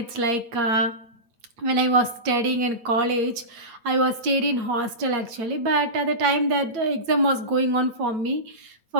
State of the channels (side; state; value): left; late; 8.5 ms